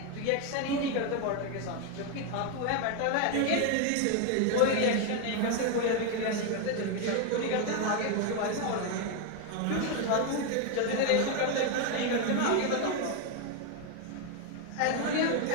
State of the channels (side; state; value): both; different; correlation 0.01